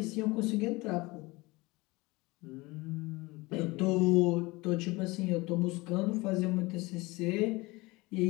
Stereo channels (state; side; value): quieter; right; 22.7 dB